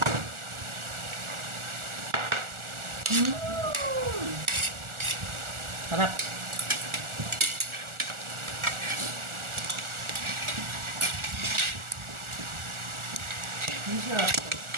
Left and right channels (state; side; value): late; left; 1.4 ms